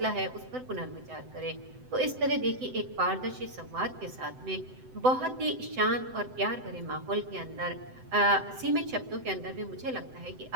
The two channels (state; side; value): late; left; 7.9 ms